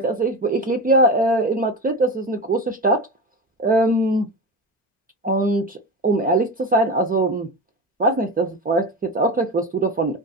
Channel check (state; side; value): normal; both; correlation 0.23